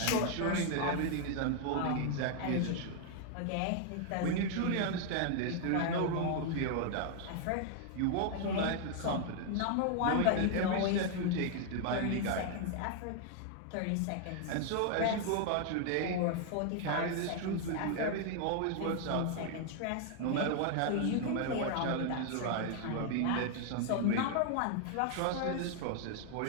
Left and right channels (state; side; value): different; both; correlation 0.00